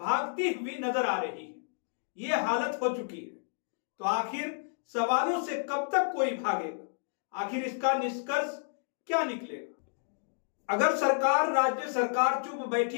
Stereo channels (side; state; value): right; silent; digital silence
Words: हुई नजर आ रही है। ये हालत हो चुकी है। तो आखिर सवालों से कब तक कोई भागेगा, आखिर इसका निष्कर्ष क्या निकलेगा? अगर सरकार, राज्य सरकार चुप बैठी